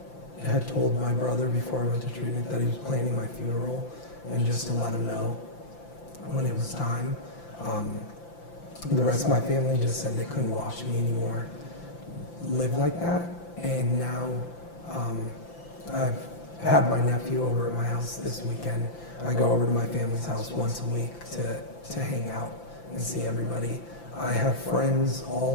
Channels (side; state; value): right; late; 5.9 ms